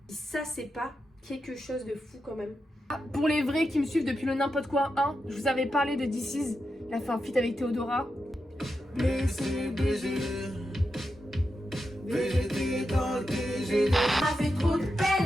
Et ça, c'est pas quelque chose de fou quand même. Ah, pour les vrais qui me suivent depuis le n'importe quoi 1, je vous avais parlé de This Is. Il a fait un feat avec Théodora. Blessé, BG. BG dans le TG. Ça fait trop de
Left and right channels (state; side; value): normal; both; correlation 0.88